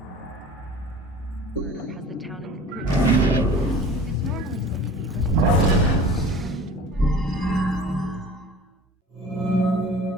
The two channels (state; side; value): normal; both; correlation 0.43